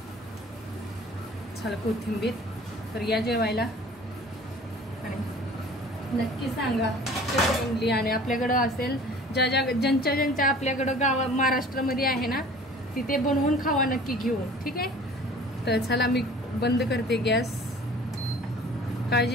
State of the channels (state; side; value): normal; both; correlation 0.47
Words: चला कोथिंबीर. तर या जेवायला आणि नक्की सांगा कशी बनली. आणि आपल्याकडं असेल ज्यांच्या आपल्याकडं महाराष्ट्रामध्ये आहे ना, तिथे बनवून खावा नक्की घेऊन. ठीक आहे, तर चला मी बंद करते गॅस.